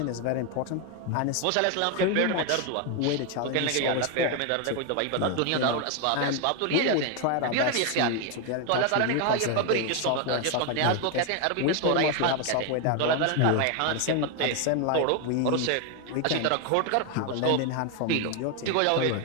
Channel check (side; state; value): both; different; correlation 0.01